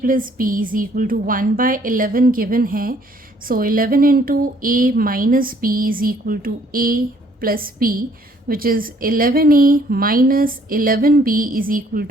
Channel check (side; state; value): both; normal; correlation 0.63